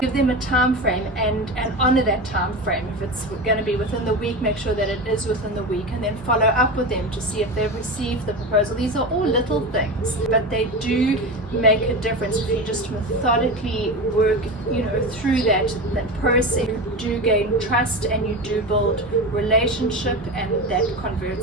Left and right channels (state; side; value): normal; both; correlation 0.24